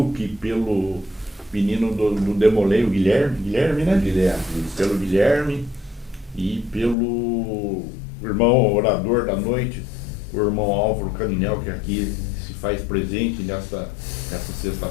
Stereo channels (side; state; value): right; drops out; at 7.0 s